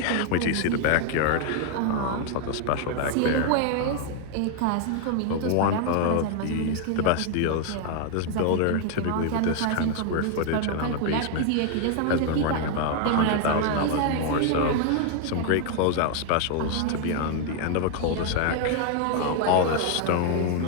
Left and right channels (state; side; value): different; both; correlation 0.00